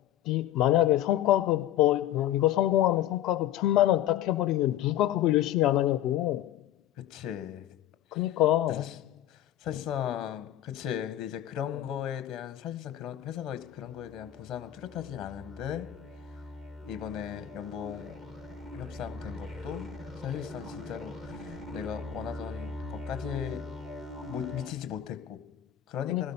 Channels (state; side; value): quieter; right; 12.0 dB